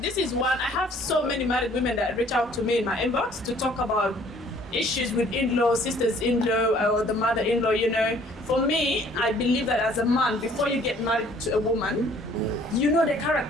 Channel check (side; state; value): both; normal; correlation 0.57